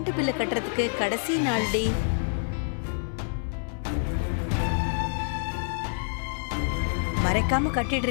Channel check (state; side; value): silent; right; digital silence